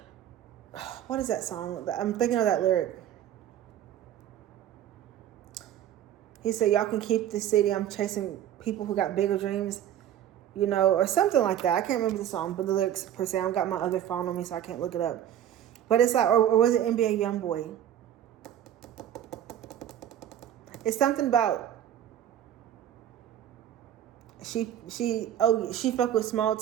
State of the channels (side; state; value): left; quieter; 10.9 dB